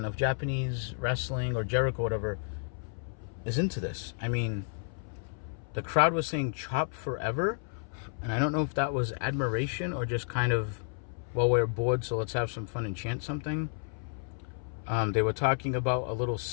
of Japanese wrestling or Jericho, whatever, is into this. I mean, the crowd was saying chop forever, and I don't know if that was admiration or just kind of, well, we're bored, so let's have some fun and chant something. They were talking about a little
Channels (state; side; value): silent; right; 57 dB below the other